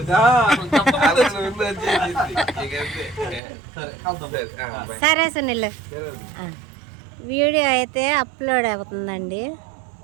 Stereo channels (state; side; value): drops out; left; at 3.4 s